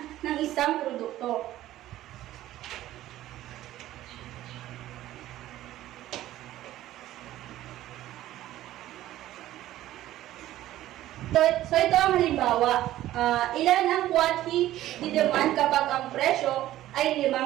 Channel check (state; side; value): quieter; left; 14.3 dB